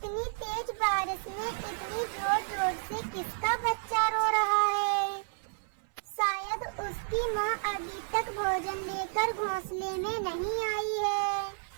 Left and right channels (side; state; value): left; silent; 57 dB below the other